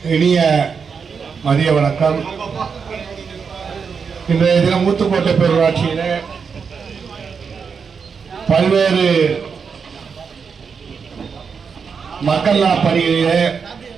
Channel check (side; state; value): left; quieter; 5.9 dB